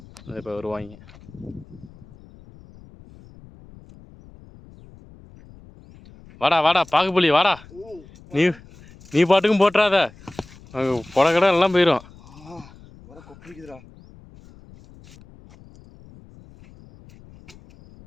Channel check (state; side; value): noise; left; rumble, 23 dB below the sound